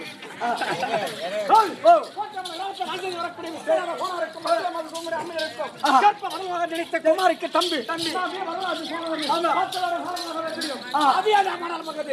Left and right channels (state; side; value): identical; both; correlation 1.00